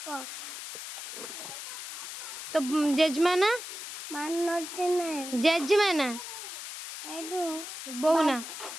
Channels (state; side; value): noise; left; hiss, 9 dB below the sound